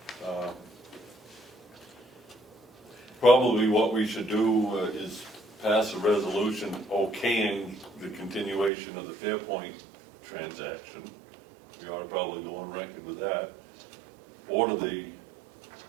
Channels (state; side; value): drops out; left; at 8.7 s